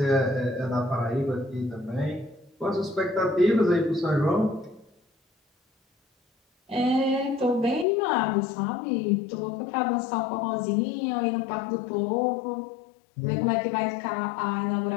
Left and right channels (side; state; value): right; drops out; at 7.9 s